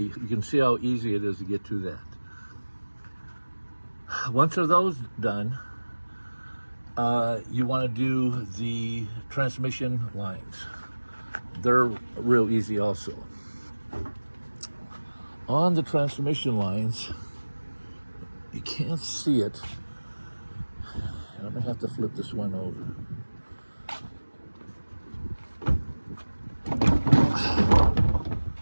can see how easy it is to get to that. Once those done, you want to do the transmission lines. They're real easy also. On the transmission lines, you can't see it. And I'm gonna have to flip this one over.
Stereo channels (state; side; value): inverted; both; correlation -1.00